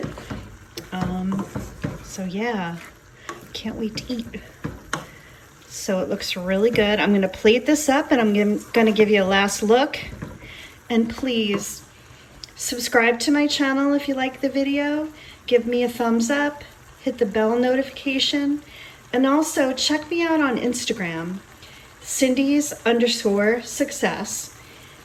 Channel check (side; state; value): both; identical; correlation 1.00